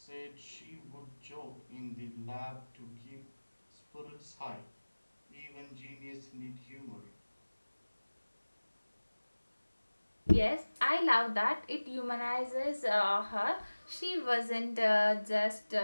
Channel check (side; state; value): both; inverted; correlation -1.00